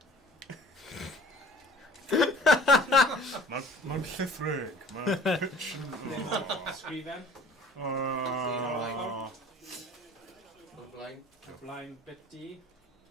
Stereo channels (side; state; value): both; normal; correlation 0.48